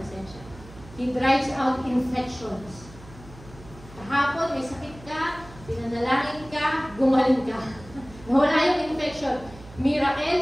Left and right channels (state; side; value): noise; right; hum, 19 dB below the sound